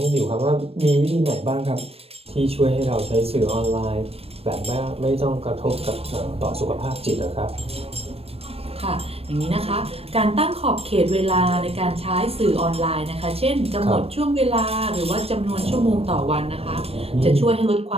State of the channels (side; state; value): left; late; 0.29 ms